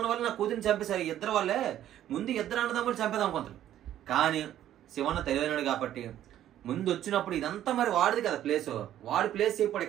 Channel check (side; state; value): left; quieter; 11.9 dB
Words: వల్ల నా కూతురిని చంపేశారు, ఇద్దరు వాళ్ళే ముందు ఇద్దరు అన్నదమ్ములు చంపేదాం అనుకుంటారు. కానీ శివన్న తెలివైనడు కాబట్టి ముందు వచ్చినప్పుడు ఇదంతా మరి వాడిది కదా ప్లేస్, వాడి ప్లేస్ ఇప్పుడు